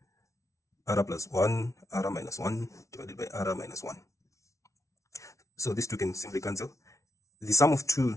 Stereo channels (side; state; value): right; late; 0.14 ms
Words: r plus 1, r minus 1 divided by r minus 1. So these two can simply cancel. The sum of two